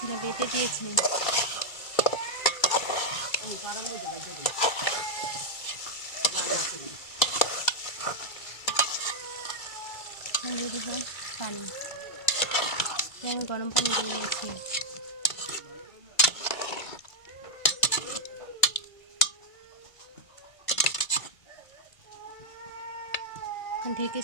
বেটে দিয়েছে। দিয়ে দেবো পানি, আমি গরম পানি দিয়ে নিয়েছি। এখন ঢেকে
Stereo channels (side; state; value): right; late; 2.3 ms